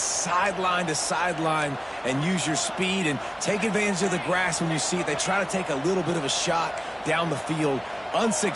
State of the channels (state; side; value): identical; both; correlation 1.00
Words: sideline to sideline and use your speed and take advantage of the grass when you see it. They try to take a little bit of a shot down the field